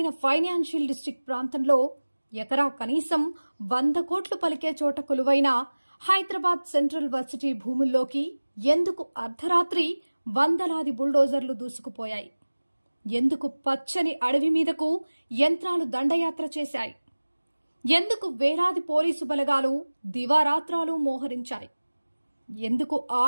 ఫైనాన్షియల్ డిస్ట్రిక్ట్ ప్రాంతంలో ఎకరా కనీసం 100 కోట్లు పలికే చోట కొలువైన హైదరాబాద్ సెంట్రల్ వర్సిటీ భూముల్లోకి ఎందుకు అర్ధరాత్రి వందలాది బుల్డోజర్లు దూసుకుపోయాయి? ఎందుకు పచ్చని అడవి మీదకు యంత్రాలు దండయాత్ర చేశాయి? ఎందుకు వేలాది పోలీసు బలగాలు దివారాత్రాలు మోహరించాయి? ఎందుకు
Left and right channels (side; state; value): both; inverted; correlation -1.00